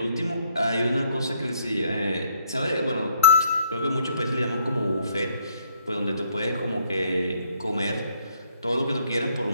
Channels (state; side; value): inverted; both; correlation -0.67